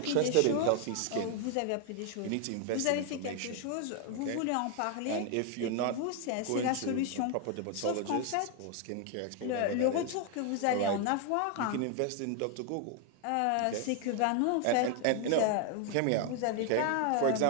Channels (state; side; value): different; both; correlation 0.01